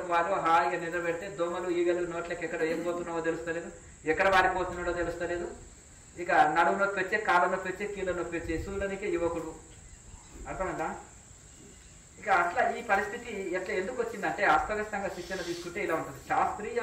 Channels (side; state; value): both; identical; correlation 1.00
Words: వాళ్ళు హాయిగా నిద్ర పెడితే దోమలు ఈగలు నోట్లకి ఎక్కడ ఏం పోతున్నావో తెలుస్తలేదు, ఎక్కడ వారిపోతున్నాడో తెలుస్తలేదు. ఇక నడుము నొప్పి వచ్చే, కాళ్ళ నొప్పి వచ్చే, కీళ్ళ నొప్పి వచ్చే సూర్యునికి యువకుడు, అర్థమైందా? ఇక అట్లా ఈ పరిస్థితి ఎట్లా ఎందుకు వచ్చిందంటే అస్తవ్యస్తంగా శిక్షణ తీసుకుంటే ఇలా ఉంటుంది.